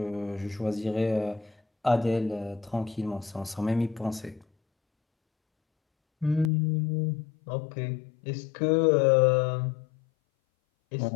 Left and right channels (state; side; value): drops out; right; at 6.5 s